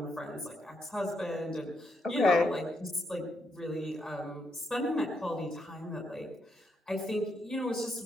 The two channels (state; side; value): normal; both; correlation 0.78